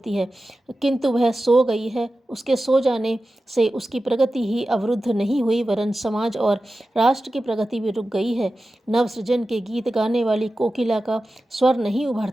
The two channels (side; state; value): both; normal; correlation 0.94